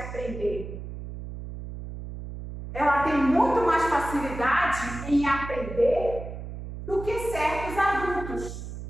Ela tem muito mais facilidade em aprender do que certos adultos.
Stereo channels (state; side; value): noise; right; hum, 9 dB below the sound